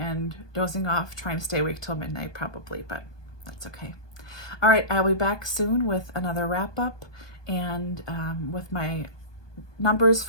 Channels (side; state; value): right; late; 1.2 ms